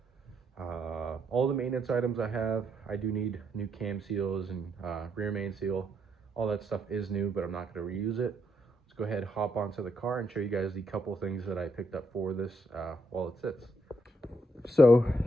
All the maintenance items I have. I do need new cam seals and rear main seal. All that stuff is new, but I'm not going to reuse it. Let's go ahead, hop onto the car and show you guys the couple things that I picked up for this while it sits. So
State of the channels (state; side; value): normal; both; correlation 0.76